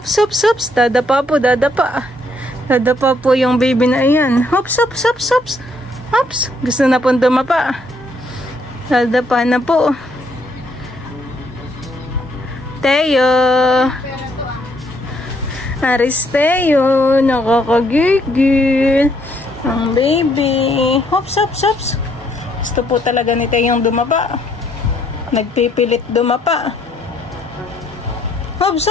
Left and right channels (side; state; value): both; normal; correlation 0.70